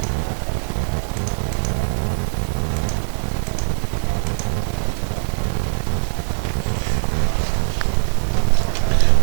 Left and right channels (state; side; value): silent; left; 65 dB below the other